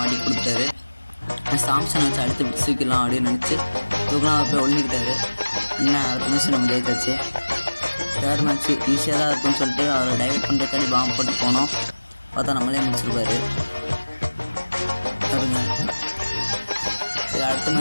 மாட்டி கொடுத்துட்டாரு. சாம்சனை வச்சு அடுத்து தூக்கிடலாம் அப்படின்னு நினச்சி தூக்கினா அவர் போய் ஒழிஞ்சிக்கிட்டாரு. என்ன அடுத்த மேட்ச் நம்ம ஜெயிச்சாச்சு. தேர்ட் மேட்ச்சு ஈஸியாக தான் இருக்குன்னு சொல்லிட்டு அவரை டைவர்ட் பண்ணுறதுக்காடி பாம்பு போட்டு போனோம். பார்த்தா நம்மளே முடிச்சிருப்பாரு பாருங்க. சரி அடுத்த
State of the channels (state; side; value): inverted; both; correlation -1.00